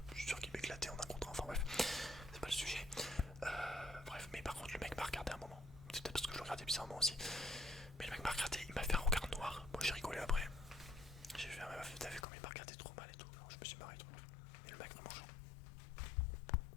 Je suis sûr qu'il m'éclatait en un contre un. Enfin bref, c'est pas le sujet. Bref, mais par contre le mec m'a regardé un moment. C'est peut-être parce que je le regardais bizarrement aussi. Mais le mec m'a regardé, il m'a fait un regard noir. Moi j'ai rigolé après. J'ai fait un meuf, t'as vu comme il m'a regardé trop mal et tout. Alors, je me suis marré trop. Et le mec vraiment genre.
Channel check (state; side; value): drops out; right; at 12.2 s